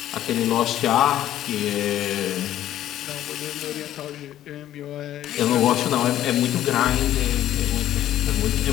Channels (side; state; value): right; quieter; 12.5 dB